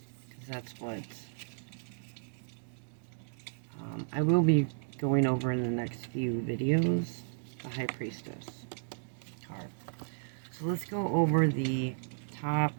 because that's what I will be going over in the next few videos, the High Priestess card. So let's go over the top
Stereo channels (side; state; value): left; silent; digital silence